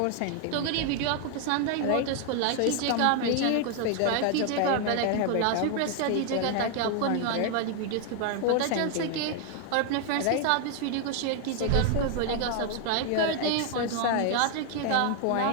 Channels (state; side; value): different; both; correlation 0.00